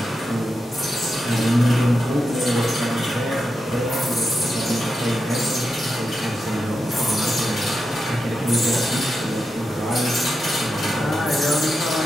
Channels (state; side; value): normal; both; correlation 0.87